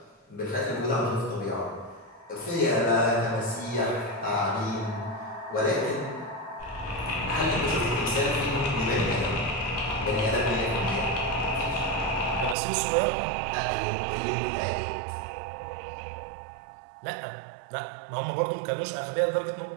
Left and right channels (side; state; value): left; drops out; at 12.6 s